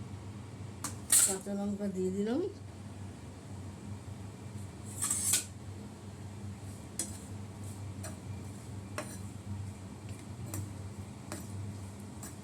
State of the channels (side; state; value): both; identical; correlation 1.00